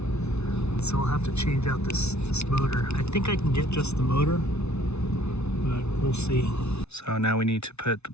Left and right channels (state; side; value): late; right; 0.81 ms